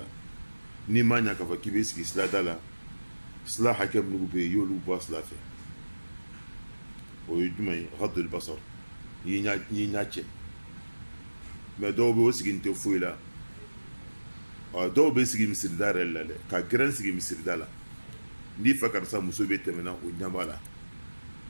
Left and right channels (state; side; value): inverted; both; correlation -1.00